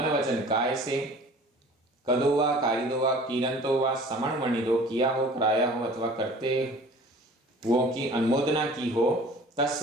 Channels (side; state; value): both; normal; correlation 0.47